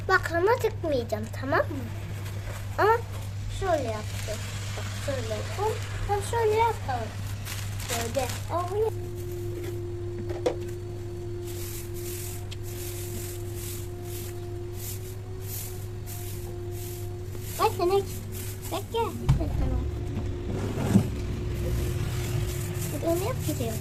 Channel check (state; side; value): identical; both; correlation 1.00